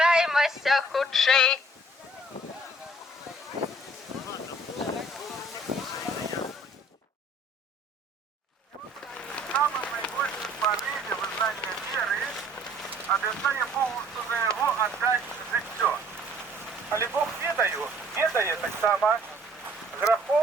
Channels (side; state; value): both; normal; correlation 0.57